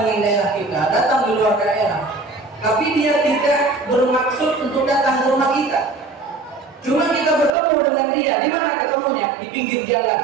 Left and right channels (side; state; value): left; drops out; at 7.5 s